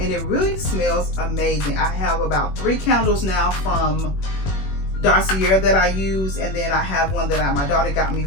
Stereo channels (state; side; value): late; right; 21 ms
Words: it really smells amazing. I have about 3 candles now from Dossier that I use, and then I have one that my daughter got me